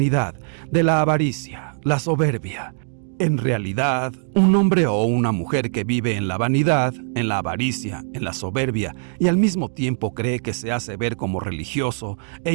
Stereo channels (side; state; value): left; silent; 64 dB below the other